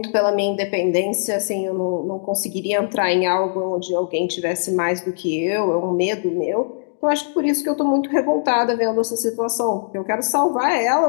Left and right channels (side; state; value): right; silent; digital silence